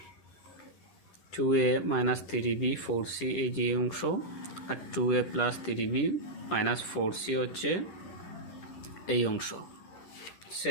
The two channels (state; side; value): late; right; 10 ms